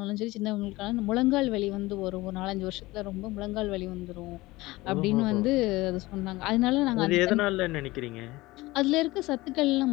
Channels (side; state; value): right; quieter; 20.0 dB